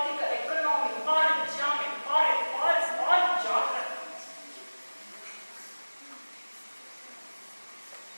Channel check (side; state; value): both; inverted; correlation -1.00